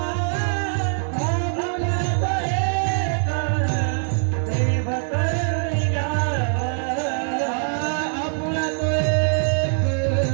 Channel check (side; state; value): left; silent; 64 dB below the other